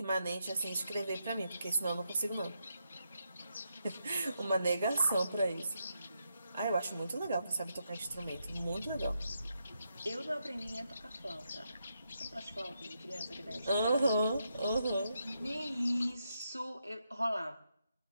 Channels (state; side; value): inverted; both; correlation -0.83